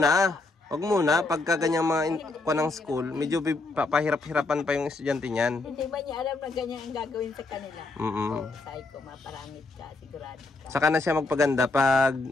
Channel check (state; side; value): quieter; right; 3.4 dB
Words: Pagka ganyang mga ng school, medyo pahirap-hirapan pa yung estudyante niyan. Hindi ba niya alam na ganyan ang gagawin sa kanila? So, sabi ko, maparangit ka, sigurado ka. Saka na siya magpaganda pag